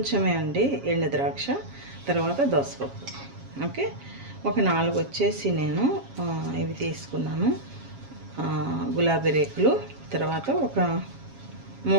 అండి ఎండు ద్రాక్ష, తర్వాత దోసపప్పు. ఓకే, ఒక 4 వచ్చేసి నేను ఇవి తీసుకున్నాను, గులాబీ రేకులు, తర్వాత ఒక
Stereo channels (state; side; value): late; left; 7.3 ms